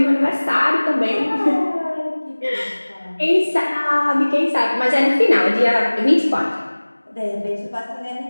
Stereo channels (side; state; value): both; inverted; correlation -1.00